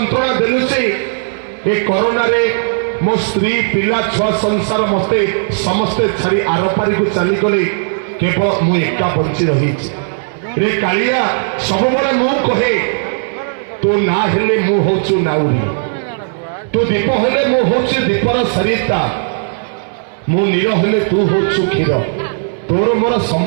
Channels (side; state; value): left; silent; digital silence